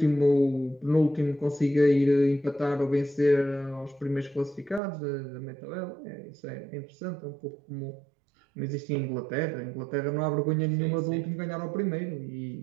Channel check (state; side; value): drops out; left; at 4.8 s